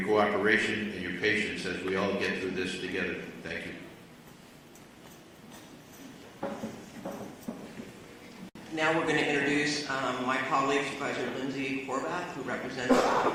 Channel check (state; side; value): identical; both; correlation 1.00